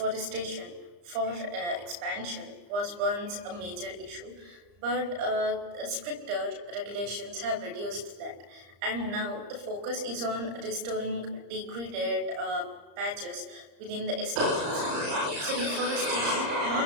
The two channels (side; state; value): left; late; 34 ms